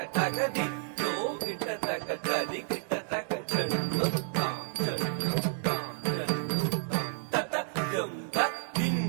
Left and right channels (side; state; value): left; silent; digital silence